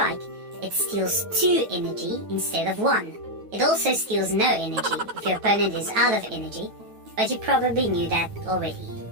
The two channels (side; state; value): left; late; 9.3 ms